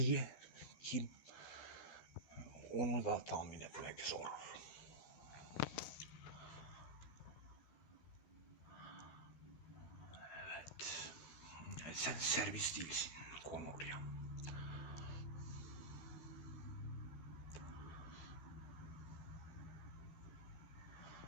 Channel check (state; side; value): late; right; 13 ms